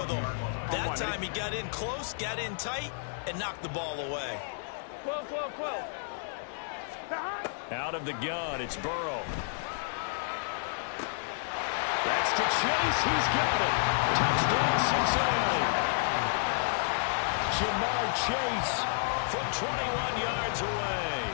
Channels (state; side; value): silent; right; digital silence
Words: them. That time he got in close, got in tight, and knocked the ball away. 12, 12, 12. Out of the gun, it's Burrow. That's to Chase. He's got it. Touchdown, Cincinnati. Jamar Chase from 21 yards away.